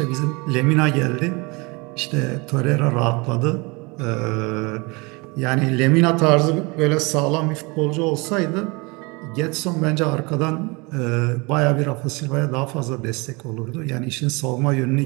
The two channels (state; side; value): quieter; left; 27.3 dB